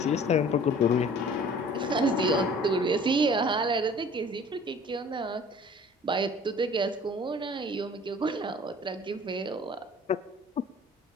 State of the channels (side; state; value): both; normal; correlation 0.49